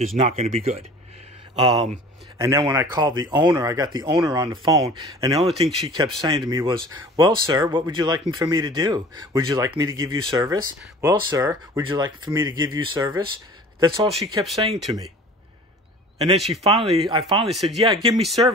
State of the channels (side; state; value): both; normal; correlation 0.44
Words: not going to be good. And then when I called the owner, I got the owner on the phone, and the only thing she kept saying to me was, well, sir, what would you like for me to do? Would you like me to give you service? Well, sir, would you like for me to give you service? That's all she kept saying to me. And then I finally said, yeah, give me